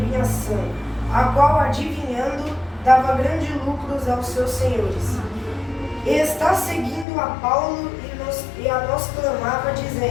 a qual, adivinhando, dava grandes lucros aos seus senhores. E está seguindo a Paulo e a nós clamava,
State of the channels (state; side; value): drops out; right; at 7.1 s